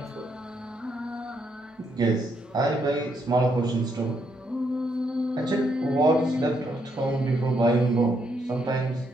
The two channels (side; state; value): both; normal; correlation 0.76